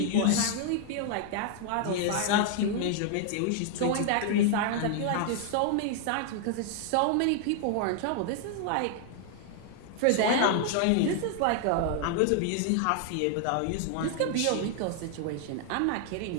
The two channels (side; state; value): both; different; correlation 0.00